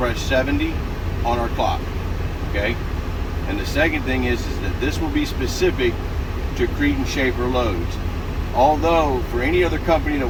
70 on our clock. Okay? And the second thing is that this will be specific to Cretin Schaefer loads. Although for any other company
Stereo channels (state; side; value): identical; both; correlation 1.00